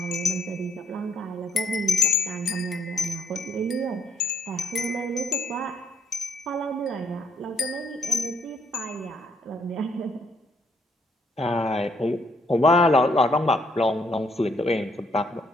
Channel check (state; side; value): normal; both; correlation 0.70